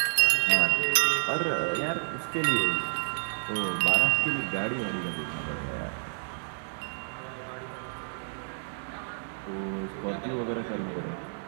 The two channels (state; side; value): silent; left; digital silence